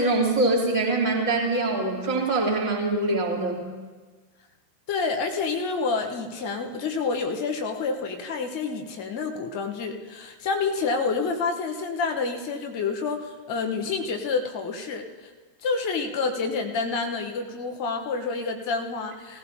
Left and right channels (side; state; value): right; late; 2.1 ms